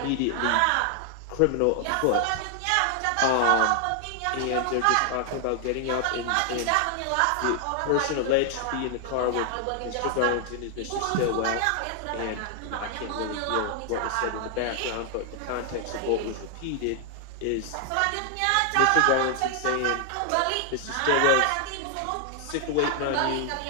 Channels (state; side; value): different; both; correlation 0.00